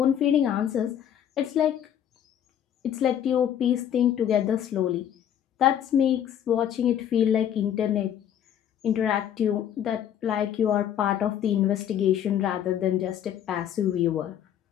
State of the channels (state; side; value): quieter; right; 9.9 dB